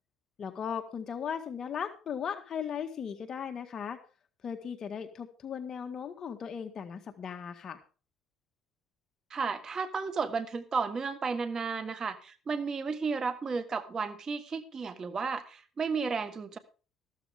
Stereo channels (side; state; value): both; normal; correlation 0.78